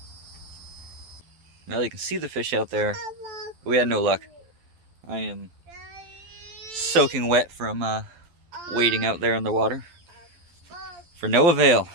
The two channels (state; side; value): late; left; 12 ms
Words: Well, you can see the fish out there. We had no luck. I am soaking wet from wading out there in the water. For no avail.